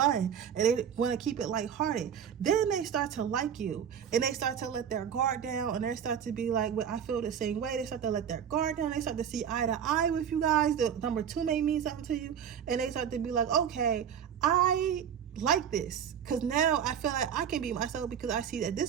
and they want to keep it lighthearted. Then they start to like you and they start to let their guard down and they start to be like, well, I feel the same way. They start to let their guard down. They start to see eye to eye with you guys. The number 2 may mean something to you, and they start to be like, okay, I like this because now I feel like I can be myself because I see that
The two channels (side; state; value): left; quieter; 8.4 dB